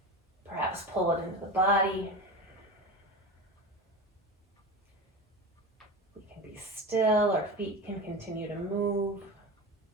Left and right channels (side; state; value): both; normal; correlation 0.27